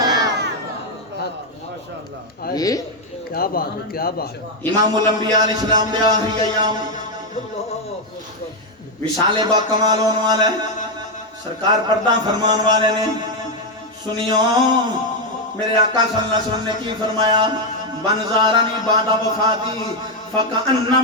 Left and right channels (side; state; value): both; normal; correlation 0.03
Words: کیا بات امام الانبیاء علیہ السلام دے آخری ایام وصال با کمال ہونے والے سرکار پردہ فرمان والے نے سنیو میرے آقا صلی اللہ علیہ وسلم نے کی فرمایا من زارنی بعد وفاتی